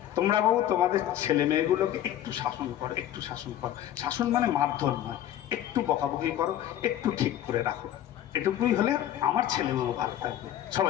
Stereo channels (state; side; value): quieter; right; 11.9 dB